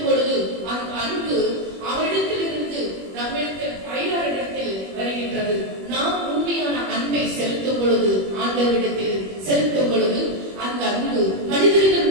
பொழுது அந்த அன்பு அவரிடத்திலிருந்து நம்மிடத்தில் அயலாரிடத்தில் வருகின்றது. நாம் உண்மையான அன்பை செலுத்தும் பொழுது, ஆண்டவரிடத்தில் செலுத்தும் பொழுது, அந்த அன்பு மனிதர்கள்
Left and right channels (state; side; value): late; left; 21 ms